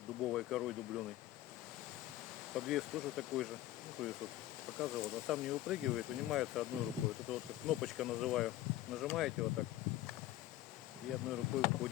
дубовой корой дубленой. Подвес тоже такой же. Ну, то есть вот показывал, а сам не выпрыгивает, вынимается одной рукой. Вот это вот как кнопочка называю. Нажимаете вот так, и одной рукой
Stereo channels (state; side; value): quieter; right; 14.7 dB